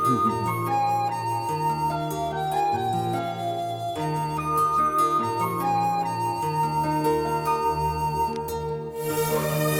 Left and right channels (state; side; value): identical; both; correlation 1.00